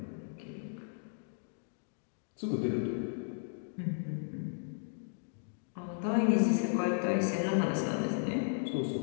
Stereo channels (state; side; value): silent; right; digital silence